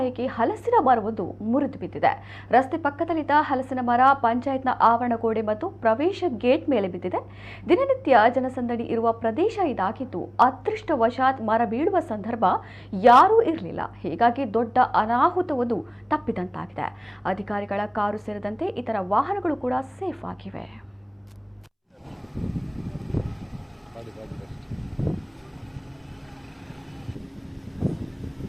ಹಲಸಿನ ಮರವೊಂದು ಮುರಿದು ಬಿದ್ದಿದೆ. ರಸ್ತೆ ಪಕ್ಕದಲ್ಲಿದ್ದ ಹಲಸಿನ ಮರ ಪಂಚಾಯತ್ನ ಆವರಣ ಗೋಡೆ ಮತ್ತು ಪ್ರವೇಶ ಗೇಟ್ ಮೇಲೆ ಬಿದ್ದಿದೆ. ದಿನನಿತ್ಯ ಜನಸಂದಣಿ ಇರುವ ಪ್ರದೇಶ ಇದಾಗಿದ್ದು ಅದೃಷ್ಟವಶಾತ್ ಮರ ಬೀಳುವ ಸಂದರ್ಭ ಯಾರೂ ಇರಲಿಲ್ಲ. ಹೀಗಾಗಿ ದೊಡ್ಡ ಅನಾಹುತವೊಂದು ತಪ್ಪಿದಂತಾಗಿದೆ. ಅಧಿಕಾರಿಗಳ ಕಾರು ಸೇರಿದಂತೆ ಇತರ ವಾಹನಗಳು ಕೂಡ ಸೇಫ್ ಆಗಿವೆ.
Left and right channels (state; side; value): identical; both; correlation 1.00